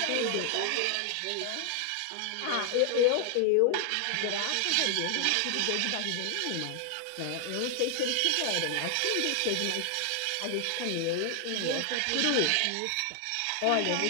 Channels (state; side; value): different; both; correlation 0.00